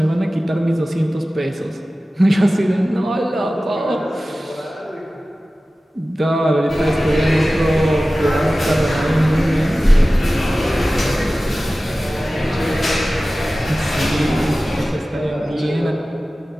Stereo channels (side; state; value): both; normal; correlation 0.96